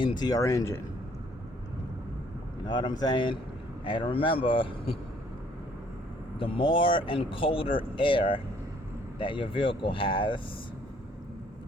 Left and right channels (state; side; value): normal; both; correlation 0.62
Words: your engine. You know what I'm saying? And remember, the more and colder air that your vehicle has,